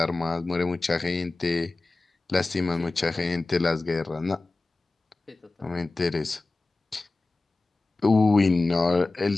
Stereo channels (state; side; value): quieter; right; 3.3 dB